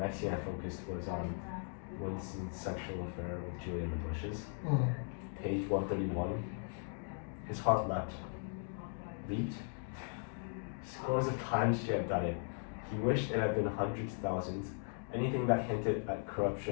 scene I focused was on Winston's sexual affair with Julia in the bushes. Page 131. His heart leaped. Scores of times she had done it. He wished it had been hundreds, thousands. Anything that hinted at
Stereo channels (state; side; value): silent; right; 52 dB below the other